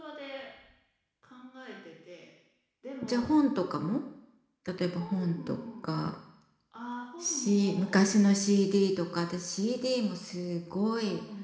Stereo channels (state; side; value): identical; both; correlation 1.00